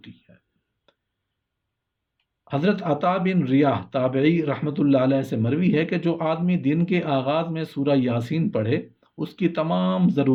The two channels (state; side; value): identical; both; correlation 1.00